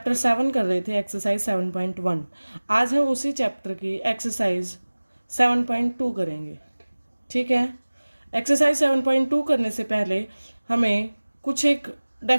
7 कर रहे थे, एक्सरसाइज 7.1। आज हम उसी चैप्टर की एक्सरसाइज 7.2 करेंगे। ठीक है। एक्सरसाइज 7.2 करने से पहले हमें कुछ एक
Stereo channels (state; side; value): inverted; both; correlation -1.00